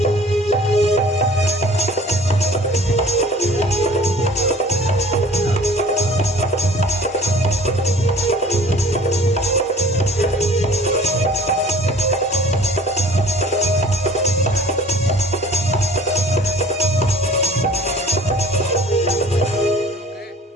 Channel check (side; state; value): both; normal; correlation 0.49